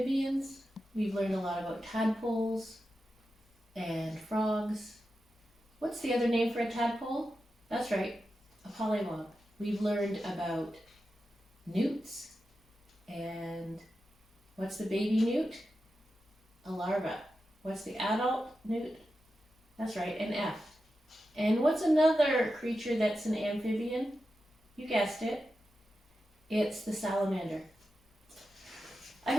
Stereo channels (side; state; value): both; normal; correlation 0.90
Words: We've learned a lot about tadpoles and frogs. What's the other name for a tadpole? That's right, a polliwog. We've learned about newts, and what's the baby newt? A larva. What's the adult newt? That's right, an F. And what's another creature that's an amphibian? You guessed it. It's the salamander. I